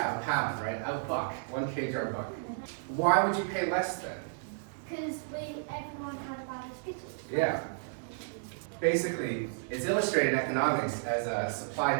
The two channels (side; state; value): left; silent; digital silence